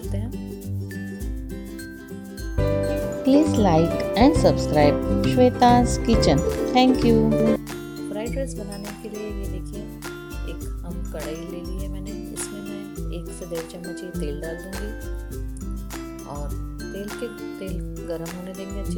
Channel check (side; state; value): both; identical; correlation 1.00